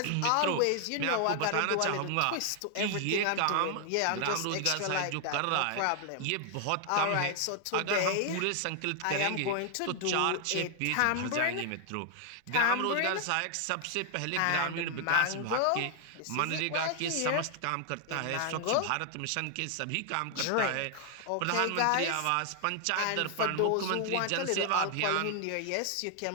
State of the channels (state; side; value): different; both; correlation 0.00